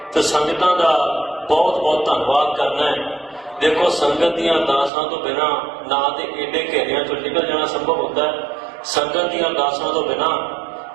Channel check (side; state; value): left; drops out; at 4.9 s